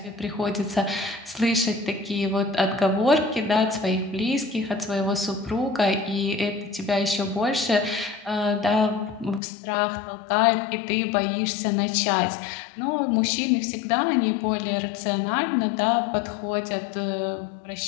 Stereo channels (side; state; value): right; drops out; at 9.4 s